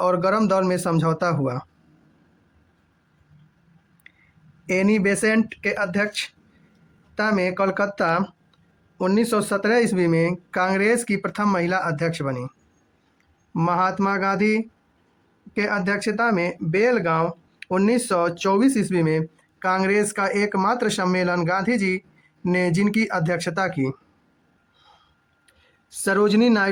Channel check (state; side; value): identical; both; correlation 1.00